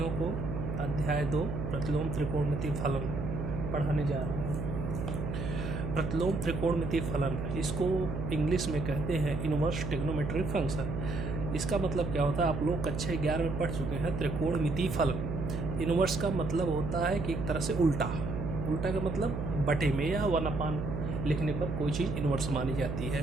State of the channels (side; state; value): right; noise; hum, 4 dB below the sound